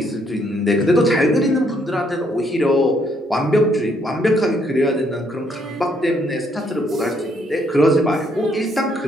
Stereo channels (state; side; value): normal; both; correlation 0.71